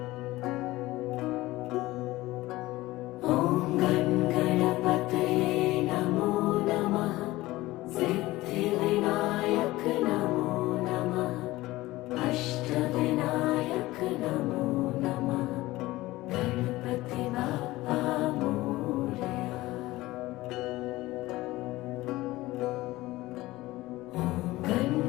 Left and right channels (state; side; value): quieter; right; 18.3 dB